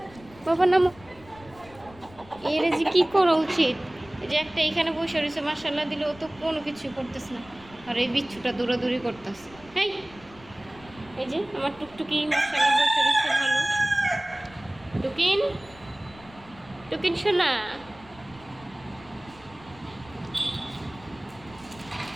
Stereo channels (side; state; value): left; noise; rumble, 22 dB below the sound